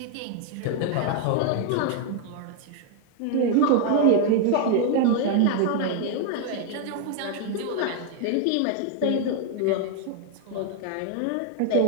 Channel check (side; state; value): both; different; correlation 0.00